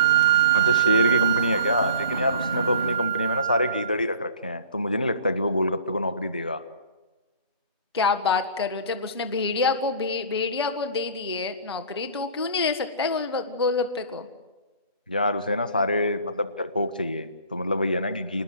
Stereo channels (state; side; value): inverted; both; correlation -0.45